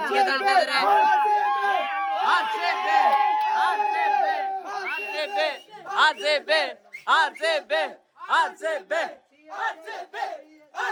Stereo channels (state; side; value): identical; both; correlation 1.00